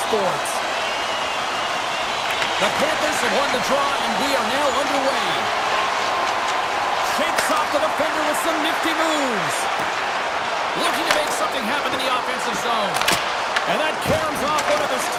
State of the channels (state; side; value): identical; both; correlation 1.00